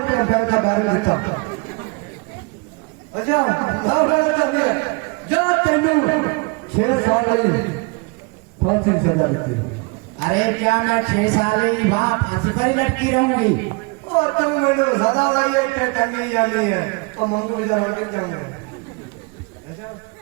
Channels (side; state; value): left; quieter; 28.8 dB